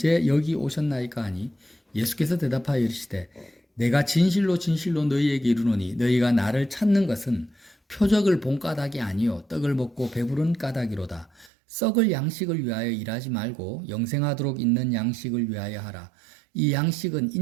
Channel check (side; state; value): left; drops out; at 11.5 s